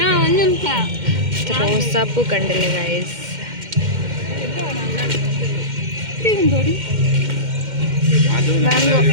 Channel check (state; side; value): late; left; 2.1 ms